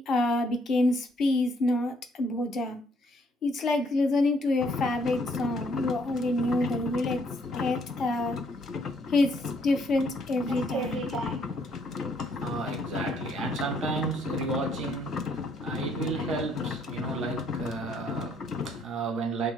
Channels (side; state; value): both; normal; correlation 0.68